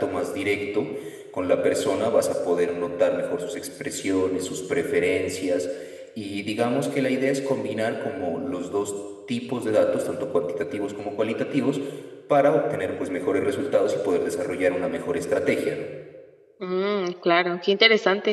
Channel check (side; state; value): both; identical; correlation 1.00